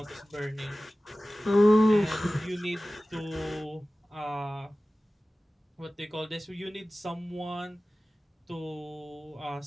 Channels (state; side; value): normal; both; correlation 0.96